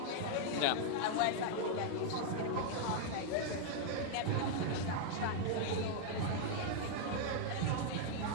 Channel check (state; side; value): different; both; correlation -0.01